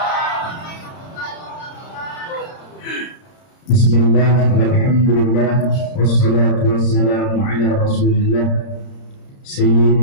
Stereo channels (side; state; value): right; late; 30 ms